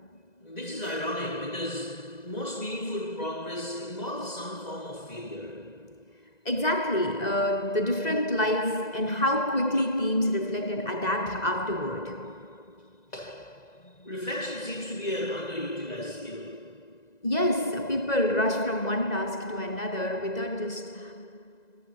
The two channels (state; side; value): late; right; 2.0 ms